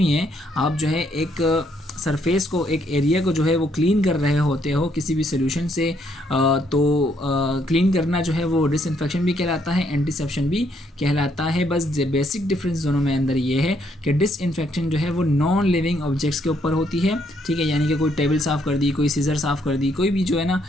है। आप जो है एक सरफेस को, एक एरिया को जो है वो क्लीन कर रहे होते हो किसी भी सोल्यूशन से, तो क्लीन करना जो है वो डिसइंफेक्शन भी कहलाता है, एंटीसेप्शन भी कहलाता है। बस बेसिक डिफरेंस दोनों में अंदर ये है कि डिसइंफेक्शन जो है वो नॉन लिविंग ऑब्जेक्ट्स के ऊपर होती है। ठीक है, यानी कि कोई टेबल साफ़ कर दी, कोई सीजर साफ़ कर दी, कोई भी जो है ना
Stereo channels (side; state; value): both; normal; correlation 0.71